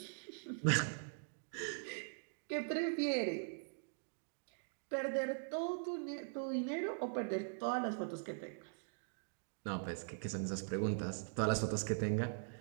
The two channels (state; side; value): silent; left; digital silence